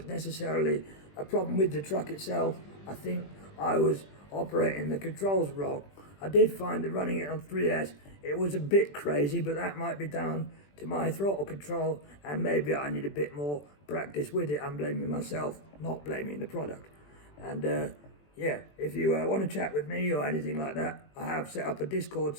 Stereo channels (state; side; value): late; right; 20 ms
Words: necessarily a problem with the truck itself. I think I was operating the controls wrong. I did find that running it on 3S, it was a bit crazy, but that might be down to my throttle control, and maybe I need a bit more practice with it. I'm blaming myself, not blaming the product. And yeah, if you want to chat with me or anything like that, I have set up a Discord